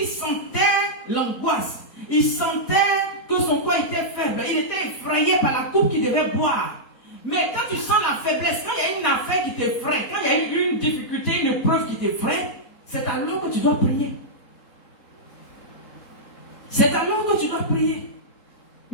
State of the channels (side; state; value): right; late; 4.2 ms